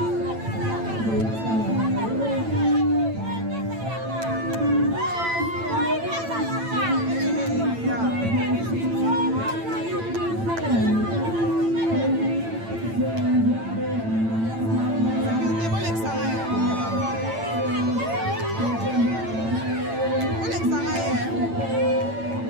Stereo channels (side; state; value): left; late; 8.9 ms